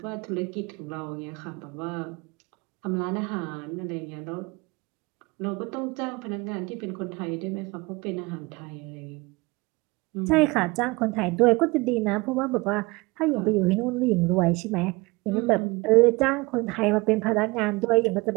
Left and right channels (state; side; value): quieter; left; 24.3 dB